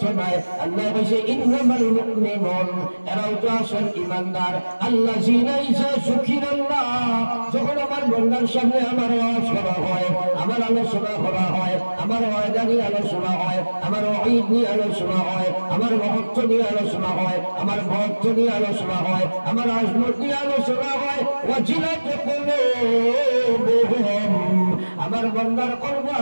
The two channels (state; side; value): inverted; both; correlation -1.00